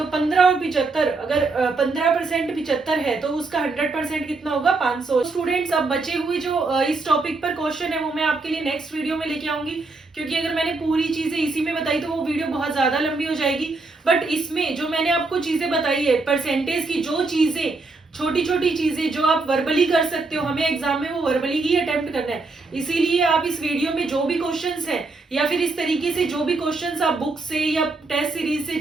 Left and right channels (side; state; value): left; quieter; 3.6 dB